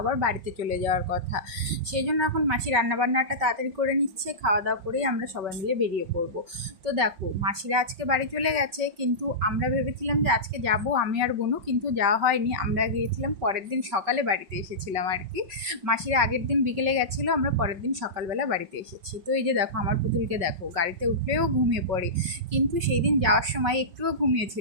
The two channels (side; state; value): left; late; 5.4 ms